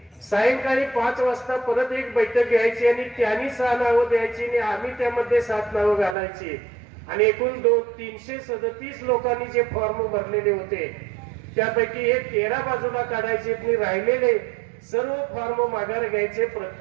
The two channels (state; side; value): drops out; left; at 6.2 s